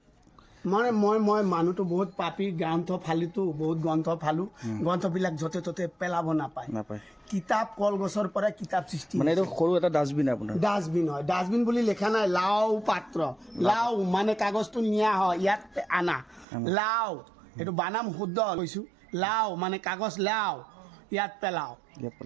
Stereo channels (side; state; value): left; drops out; at 16.4 s